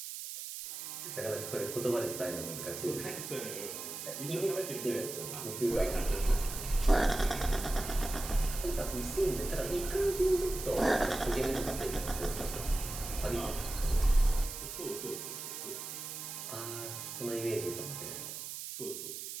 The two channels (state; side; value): noise; right; hiss, 7 dB below the sound